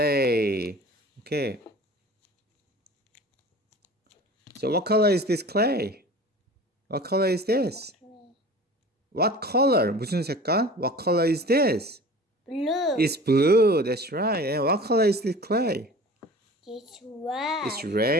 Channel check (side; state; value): both; normal; correlation 0.41